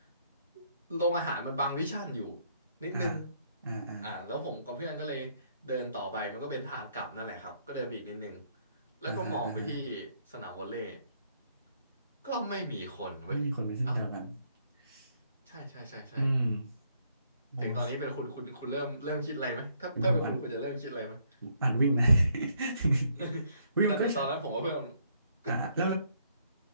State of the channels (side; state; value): both; inverted; correlation -0.70